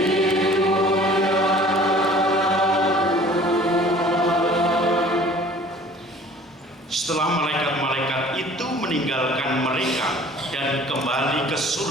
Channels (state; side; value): normal; both; correlation 0.49